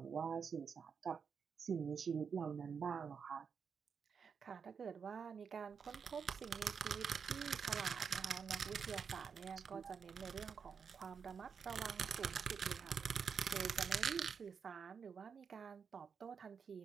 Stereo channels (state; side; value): quieter; left; 6.3 dB